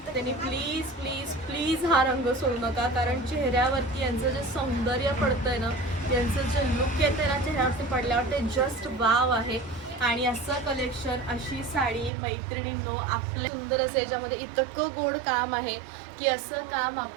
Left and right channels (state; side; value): drops out; left; at 12.1 s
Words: त्यांनी प्लीज प्लीज प्लीज हा रंग सोडू नका. कारण चेहऱ्यावरती यांचं जे सौंदर्य पडतंय ना, यांचं जे लुक येते ना चेहऱ्यावरती पडल्यावर, ते जस्ट वाव आहे. आणि असं कलेक्शन, अशी साडी मैत्रिणींनो आपल्या सुंदर असं याच्यामध्ये इतकं गोड काम आहे की असं काम